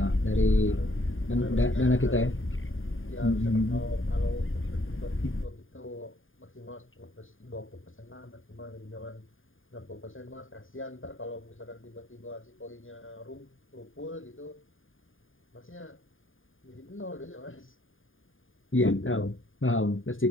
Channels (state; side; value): late; right; 0.59 ms